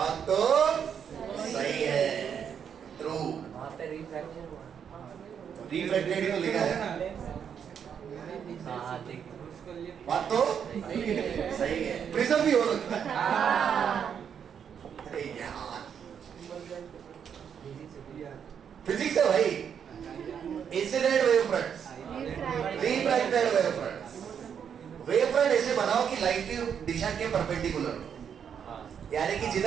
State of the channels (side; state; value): left; quieter; 7.8 dB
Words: तो सही है, ट्रू। रिफ्लेक्टेड ही तो लिखा है। बात तो सही है, प्रिज्म भी हो सकता है। अरे यार फिजिक्स है भाई। Incident wave fronts, refracted wave fronts. Wave front ऐसे बनाओ कि लाइट की दिशा के परपेंडिकुलर हो, यानी कि